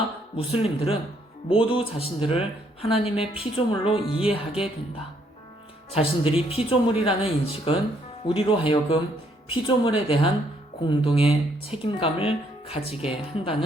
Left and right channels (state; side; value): normal; both; correlation 0.69